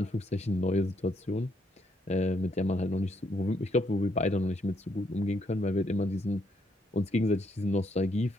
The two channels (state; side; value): normal; both; correlation 0.73